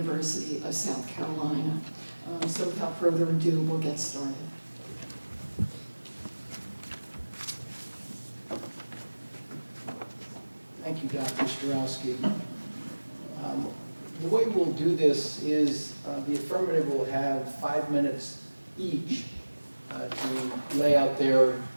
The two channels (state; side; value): inverted; both; correlation -1.00